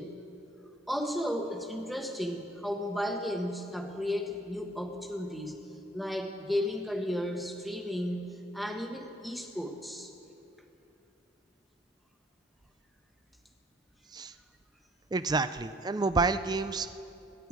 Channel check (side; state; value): both; normal; correlation 0.62